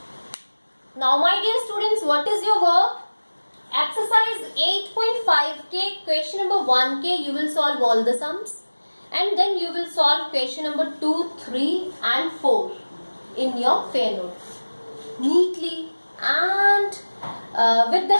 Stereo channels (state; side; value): inverted; both; correlation -1.00